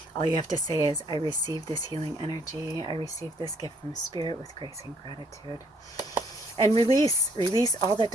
All you have to say is, I receive this healing energy. I receive this gift from Spirit with grace and gratitude. And release all that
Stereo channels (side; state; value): both; normal; correlation 0.66